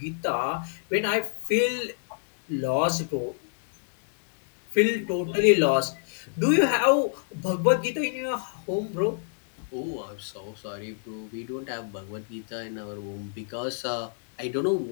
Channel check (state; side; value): silent; right; digital silence